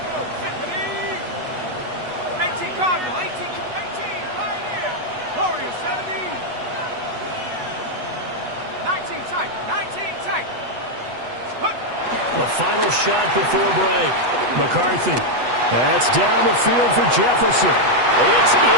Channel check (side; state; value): left; late; 8.2 ms